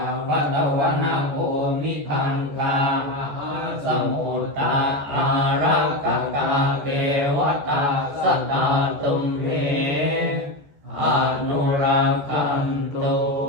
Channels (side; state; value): left; late; 14 ms